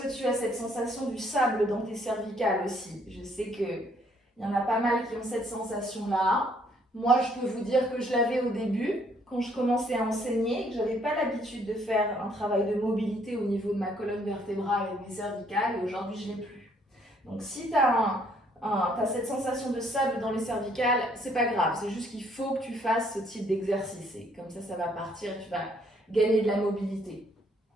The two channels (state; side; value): normal; both; correlation 0.66